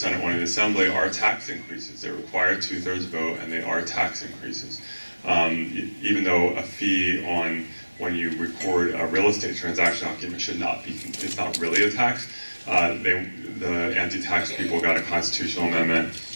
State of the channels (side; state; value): both; inverted; correlation -1.00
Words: one in the Assembly, are tax increases. They require 2/3 vote, and they are tax increases. Even though a fee on when you record a real estate transaction document should not be, it's not really a tax. The anti-tax people got a constitutional amendment